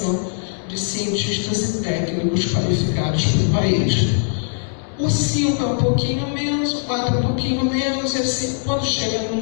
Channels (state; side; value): silent; right; digital silence